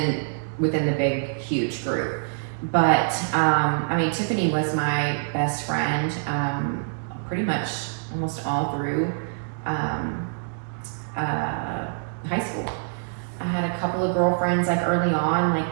the big, huge group. But I mean, Tiffany was my best friend pretty much almost all through high school. I had a couple of girlfriends like early on, like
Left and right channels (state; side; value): silent; left; digital silence